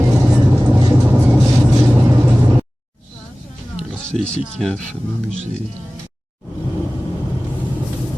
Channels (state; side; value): normal; both; correlation 0.98